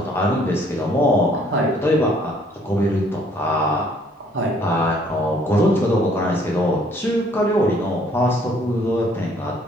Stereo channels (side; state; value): both; normal; correlation 0.62